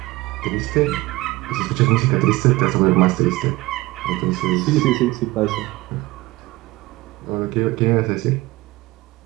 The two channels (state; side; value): quieter; left; 20.2 dB